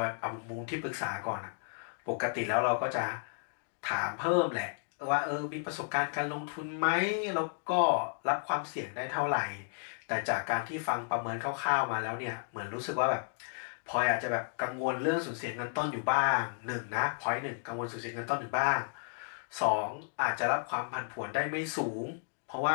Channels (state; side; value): silent; right; digital silence